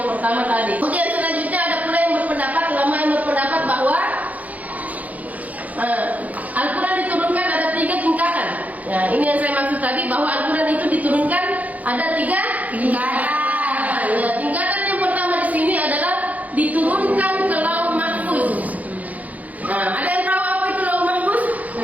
pertama tadi. Kemudian selanjutnya ada pula yang berpendapat, ulama yang berpendapat bahwa Al-Quran diturunkan ada 3 tingkatan. Ya, ini yang saya maksud tadi, bahwa Al-Quran itu diturunkan ada 3 tingkatan. Ya, tingkatan yang pertama di sini adalah diturunkan ke Lauh Mahfuz. Nah, ada yang tahu apa itu Lauh Mahfuz?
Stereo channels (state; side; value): late; left; 0.076 ms